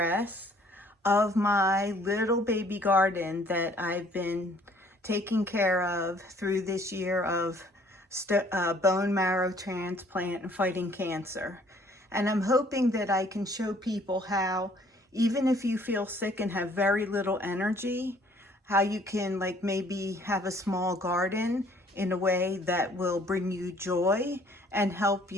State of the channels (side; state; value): both; normal; correlation 0.59